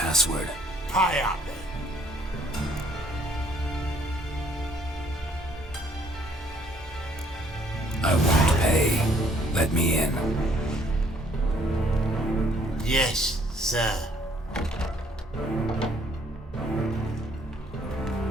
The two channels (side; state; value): both; normal; correlation 0.63